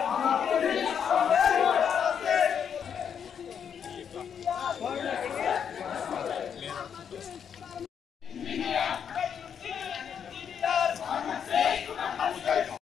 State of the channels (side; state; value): right; quieter; 7.7 dB